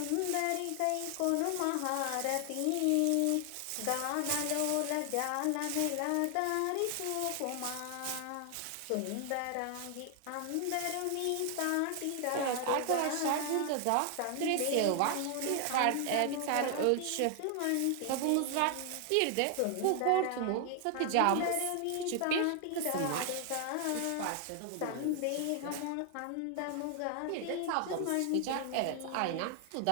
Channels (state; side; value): different; both; correlation 0.00